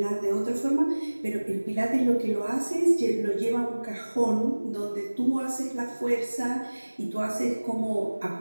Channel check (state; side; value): inverted; both; correlation -1.00